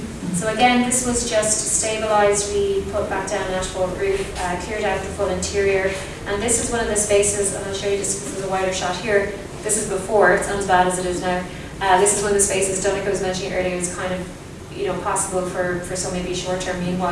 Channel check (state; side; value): identical; both; correlation 1.00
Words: So again, this was just stabilised. We put back down an asphalt roof, cleared out the full interior, and this is one of the spaces, and I'll show you just because there's a wider shot here. This is before, it's not as bad as it is now. This is one of the spaces Donnacha was mentioning earlier is kind of, you know, possible for some maybe short-term